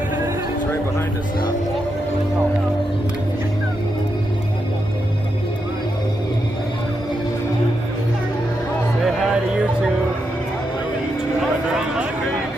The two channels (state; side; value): normal; both; correlation 0.84